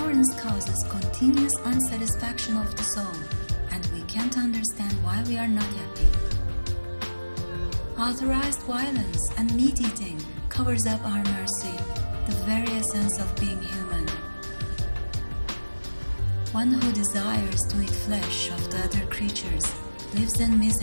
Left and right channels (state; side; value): inverted; both; correlation -1.00